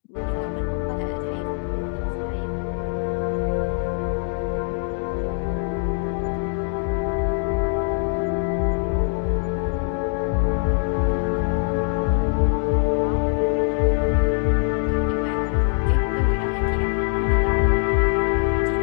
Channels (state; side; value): silent; right; 56 dB below the other